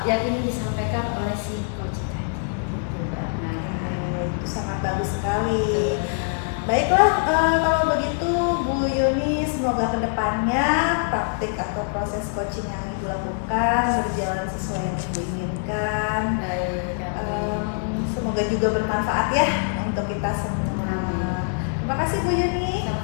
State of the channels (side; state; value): right; silent; 63 dB below the other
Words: ingin disampaikan oleh si coach tadi. Gitu, Bu Akna. Itu sangat bagus sekali. Betul, Bu Akna. Baiklah, kalau begitu Bu Yuni, semoga kedepannya praktik atau proses coaching yang Ibu lakukan berjalan sesuai yang Ibu inginkan. Baik, amin. Semoga juga bermanfaat ya untuk kita semua. Amin. Terima kasih Bu Yuni.